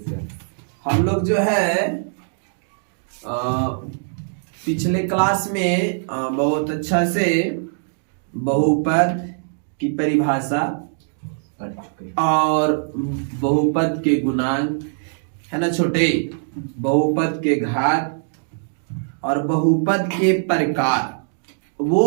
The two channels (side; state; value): left; silent; digital silence